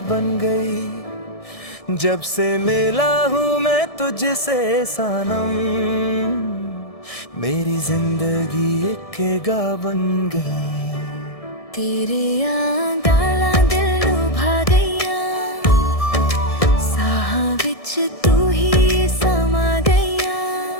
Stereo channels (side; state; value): right; late; 1.6 ms